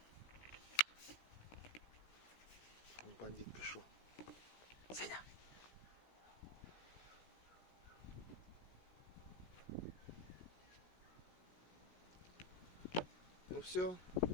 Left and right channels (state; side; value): late; right; 16 ms